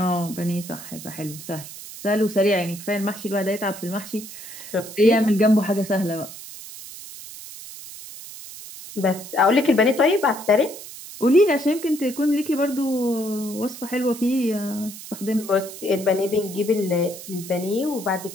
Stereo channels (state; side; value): noise; right; hiss, 13 dB below the sound